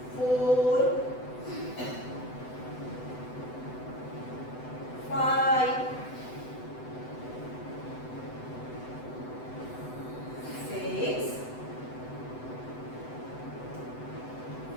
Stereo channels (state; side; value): late; right; 7.9 ms